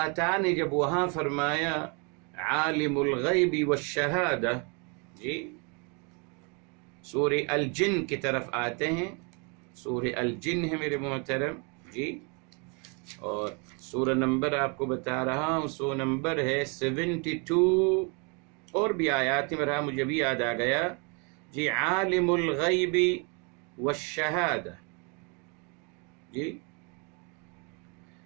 تعالیٰ نے جب وہاں فرمایا عالم الغیب والشہادہ، جی سورہ الجن کی طرف آتے ہیں. سورہ الجن ہے میرے محترم جی، اور سورہ نمبر آپ کو بتا رہا ہوں، سورہ نمبر ہے 72. اور بھی آیات میں مجھے بھی یاد آ گیا جی. عالم الغیب والشہادہ، جی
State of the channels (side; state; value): left; quieter; 34.2 dB